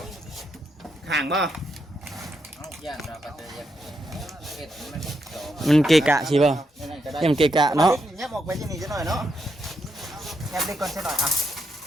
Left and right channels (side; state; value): both; normal; correlation 0.81